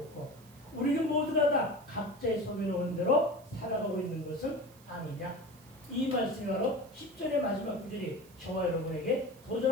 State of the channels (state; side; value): noise; right; hiss, 25 dB below the sound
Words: 우리는 모두가 다 각자의 소견에 오는 대로 살아가고 있는 것은 아니냐. 이 말씀이 바로 10절의 마지막 구절이 저와 여러분에게